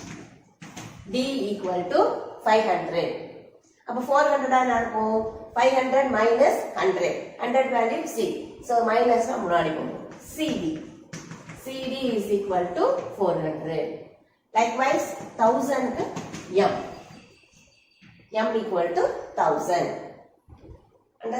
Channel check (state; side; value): identical; both; correlation 1.00